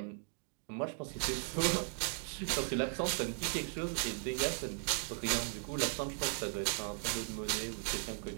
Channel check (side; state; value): left; silent; 53 dB below the other